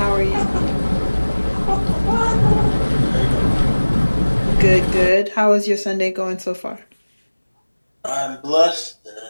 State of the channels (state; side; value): inverted; both; correlation -1.00